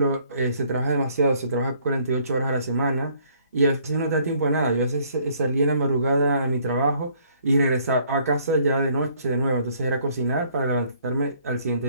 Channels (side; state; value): both; inverted; correlation -0.63